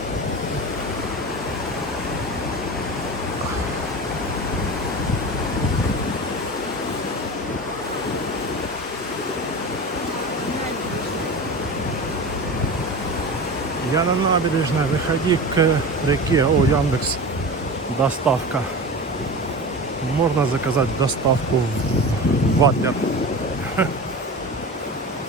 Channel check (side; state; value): both; normal; correlation 0.30